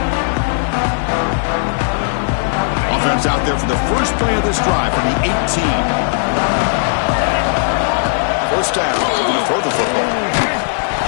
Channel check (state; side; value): silent; right; digital silence